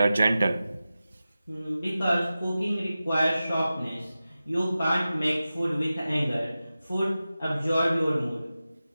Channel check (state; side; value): inverted; both; correlation -0.94